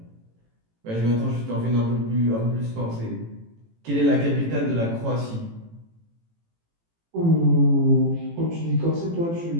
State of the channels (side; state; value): left; late; 18 ms